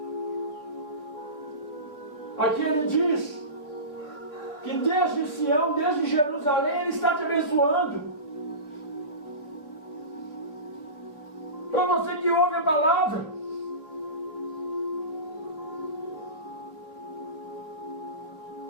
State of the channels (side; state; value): right; late; 3.3 ms